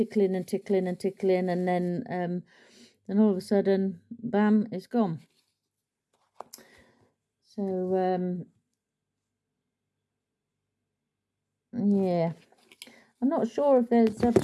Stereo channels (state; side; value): identical; both; correlation 1.00